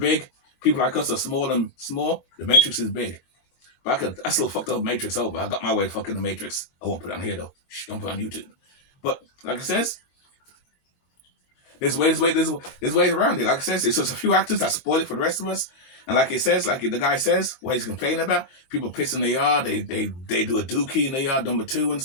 People like us are small and small. The matrix is big. But I still fucked up matrix over. I got my way fucking the matrix. I won't put it on here though. Shh, don't put it on YouTube. But like I says, there's ways around it. Like I says, it's just a few actors that spoil it for the rest of us. And like it says, like the guy says, what he's complaining about, people piss in the yard, they do a dookie in the yard, number 2 and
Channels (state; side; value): late; right; 23 ms